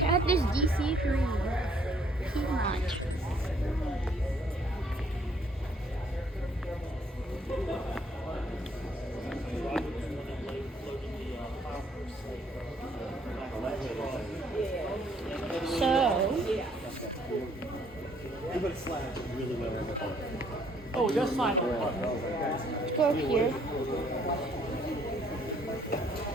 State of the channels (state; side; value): normal; both; correlation 0.64